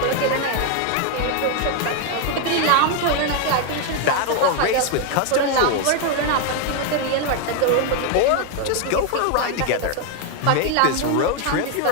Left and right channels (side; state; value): both; different; correlation 0.01